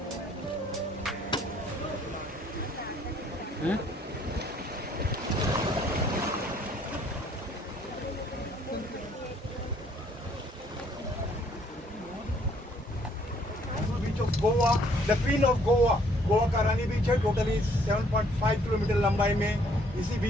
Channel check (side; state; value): both; normal; correlation 0.63